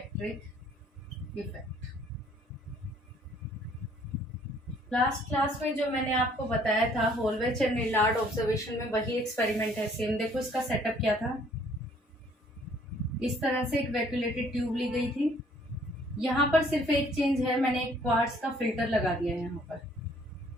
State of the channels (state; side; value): normal; both; correlation 0.60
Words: effect. Last class में जो मैंने आपको बताया था होलवेच एंड नीलार्ड ऑब्जर्वेशन में वही एक्सपेरिमेंट है सेम। देखो इसका सेटअप क्या था। इस तरह से एक वैक्यूलेटेड ट्यूब ली गई थी। यहाँ पर सिर्फ एक चेंज है, मैंने एक क्वार्ट्ज का फिल्टर लगा दिया है। यहाँ पर